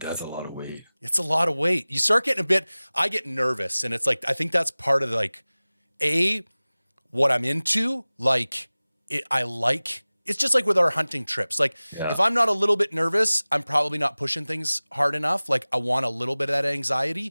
a lot of weight. It's a lot of weight. You start getting I get nervous, and it's like I think that's part of like what I'm into. Like it's just like with our hunting trips. Like Yeah. if I'm not a little bit nervous, I'm probably not pushing things hard enough. Like I want a little bit of that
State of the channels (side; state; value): both; inverted; correlation -0.99